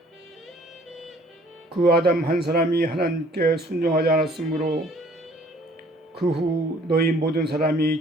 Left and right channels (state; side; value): normal; both; correlation 0.57